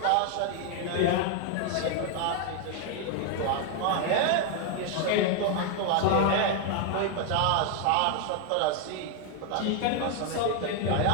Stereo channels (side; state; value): both; different; correlation 0.01